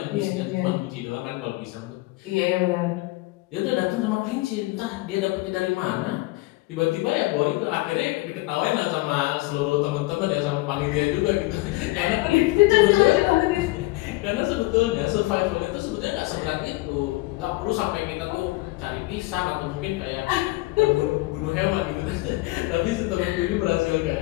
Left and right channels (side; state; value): right; quieter; 21.1 dB